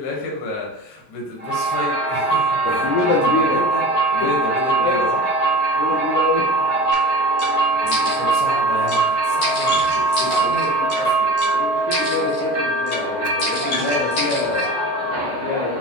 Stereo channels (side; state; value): right; late; 14 ms